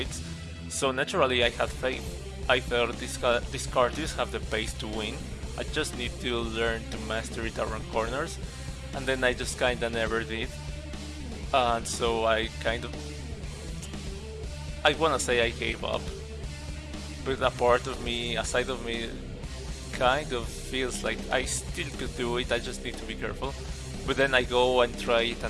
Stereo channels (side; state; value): both; identical; correlation 1.00